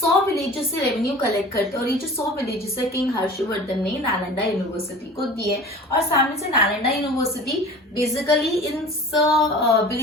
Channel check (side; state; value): both; normal; correlation 0.41